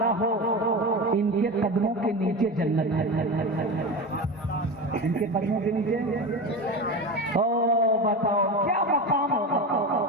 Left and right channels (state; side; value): normal; both; correlation 0.24